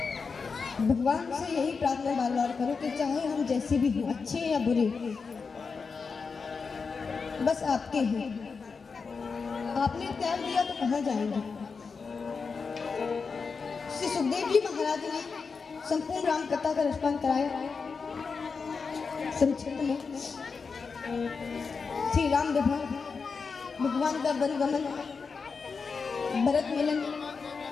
भगवान से यही प्रार्थना बार बार करो कि चाहे हम जैसे भी हों, अच्छे या बुरे, बस आपके हैं। आपने त्याग दिया तो कहाँ जाएंगे? श्री सुखदेव जी महाराज ने संपूर्ण राम कथा का रसपान कराया। संक्षिप्त में श्री राम विवाह, भगवान का वन गमन, भरत मिलन,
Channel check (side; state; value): right; quieter; 5.1 dB